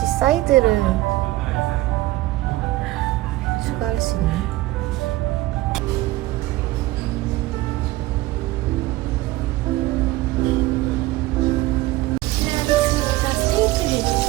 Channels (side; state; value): left; quieter; 18.1 dB